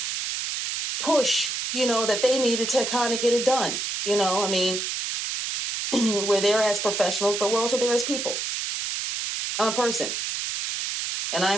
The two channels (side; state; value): right; noise; hiss, 3 dB below the sound